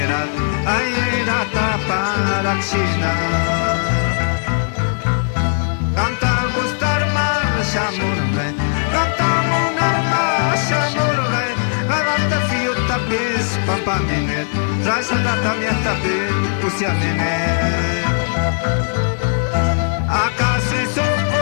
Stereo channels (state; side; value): silent; right; digital silence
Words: ay era tapara china. Canta gustar marsha murgay, canta munar marsha murgay, gagarte fiota pis pampamine, rayota tamiata pine usiamine. ¿Acaso eso